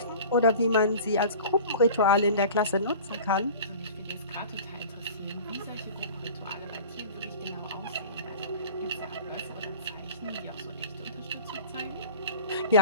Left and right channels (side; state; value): both; inverted; correlation -0.40